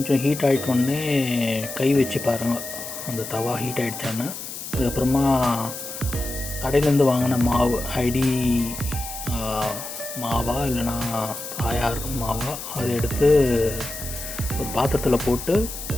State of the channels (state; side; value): noise; left; hiss, 9 dB below the sound